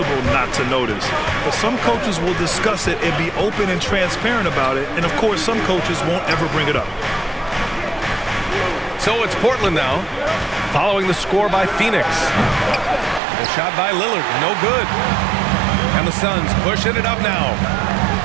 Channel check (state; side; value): drops out; left; at 13.2 s